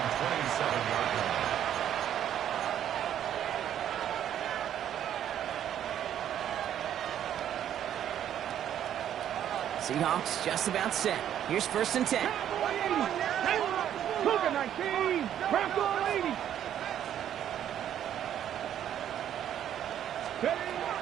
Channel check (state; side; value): quieter; left; 10.4 dB